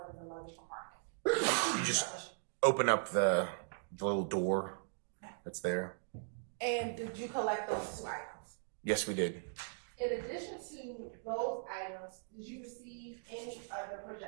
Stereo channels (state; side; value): silent; left; digital silence